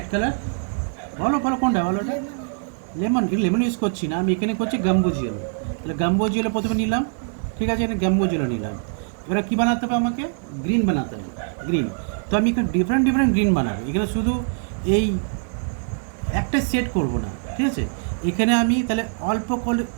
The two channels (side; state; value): left; silent; 63 dB below the other